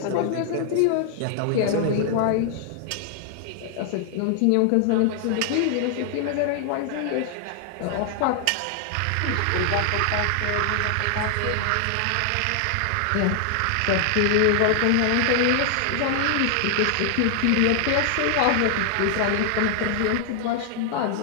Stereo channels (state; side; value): different; both; correlation 0.00